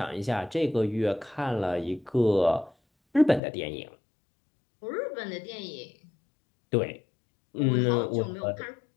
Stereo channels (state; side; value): drops out; right; at 3.4 s